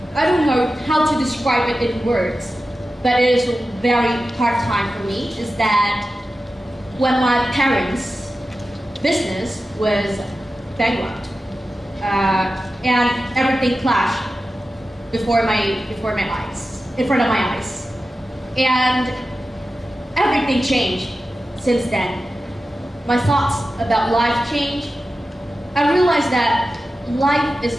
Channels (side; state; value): both; normal; correlation 0.93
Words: I don't know how to describe it in words, but it is a very hard time for me, is that when my parents' business was bankrupt, and everything clashed before my eyes, in front of my eyes. And everything changed since then. My thoughts about life changed. I realized that life is